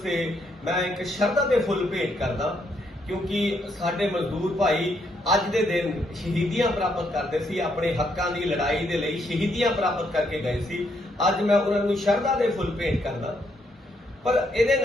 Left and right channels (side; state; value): both; normal; correlation 0.75